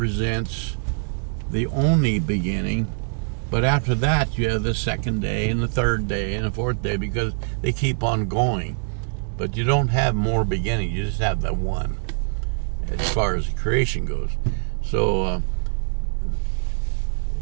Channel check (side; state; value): left; silent; 63 dB below the other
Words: the only beginning, but after that you have the second day and the third day and the fourth day, because they keep on going. But you don't have more beginnings, you just have the one as far as creation goes. So